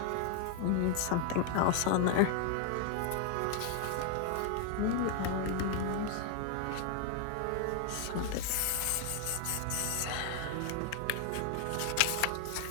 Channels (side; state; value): both; different; correlation 0.00